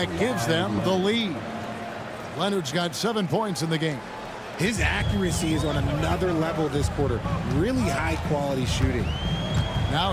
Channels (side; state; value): both; identical; correlation 1.00